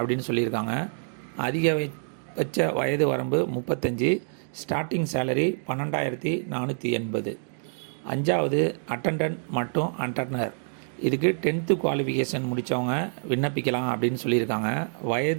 சொல்லியிருக்காங்க. அதிகபட்ச வயது வரம்பு 35, ஸ்டார்டிங் சேலரி 12,480. அஞ்சாவது அட்டண்டன்ட் மற்றும் அட்டண்டர், இதுக்கு 10th குவாலிஃபிகேஷன் முடித்தவங்க விண்ணப்பிக்கலாம் அப்படின்னு சொல்லியிருக்காங்க.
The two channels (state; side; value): silent; left; digital silence